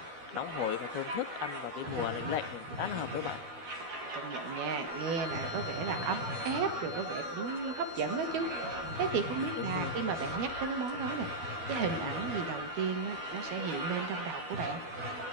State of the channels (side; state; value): left; late; 12 ms